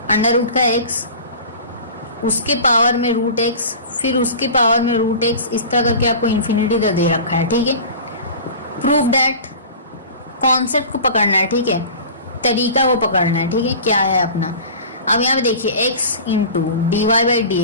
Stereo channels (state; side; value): inverted; both; correlation -0.37